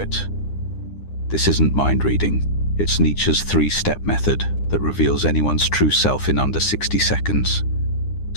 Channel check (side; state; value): right; late; 9.9 ms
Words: This isn't mind reading. It's Nietzsche's 3-step method that reveals anyone's true self in under 60 seconds.